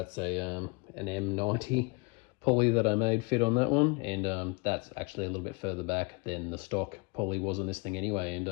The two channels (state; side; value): quieter; right; 30.1 dB